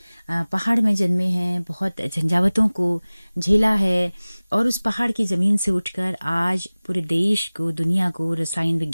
पहाड़ में जन्मे हैं, बहुत झंझावतों को झेला है और उस पहाड़ की जमीन से उठकर आज पूरे देश को, दुनिया को रसायन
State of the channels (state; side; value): inverted; both; correlation -0.99